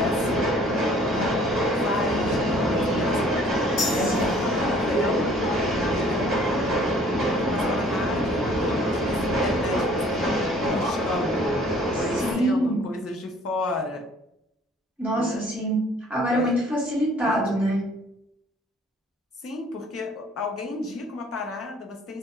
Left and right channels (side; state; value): both; normal; correlation 0.55